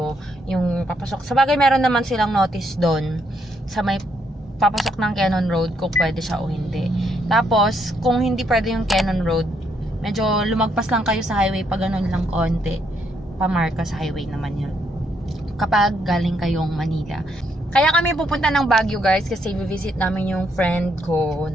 yung papasok. Sa bagay meron naman silang notice doon sa may papasok ng Jeon Road kung pwede siya o hindi. Tapos kung hindi pwede yung Jeon Road, medyo lumagpas lang kayo sa highway pag ganun lang konti. Pa-Marcos Highway naman yun. Kapag galing kayong Manila. Kaya kami pupunta ng Baguio guys kasi visit namin yung friend ko.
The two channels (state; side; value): normal; both; correlation 0.74